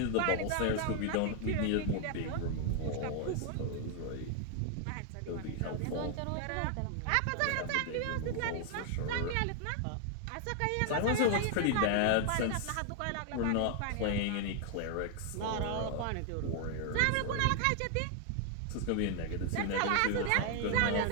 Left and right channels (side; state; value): both; different; correlation 0.00